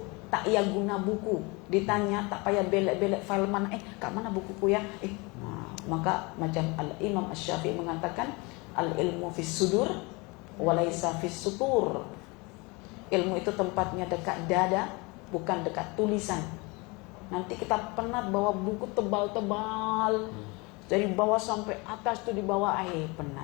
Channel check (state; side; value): quieter; right; 26.9 dB